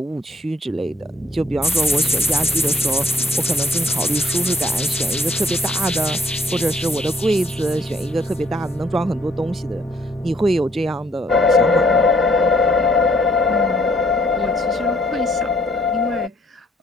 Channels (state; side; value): normal; both; correlation 0.66